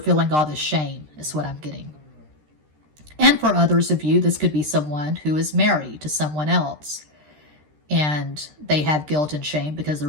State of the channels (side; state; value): left; late; 13 ms